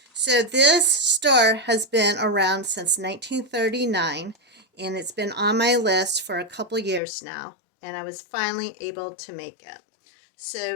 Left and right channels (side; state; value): right; drops out; at 7.0 s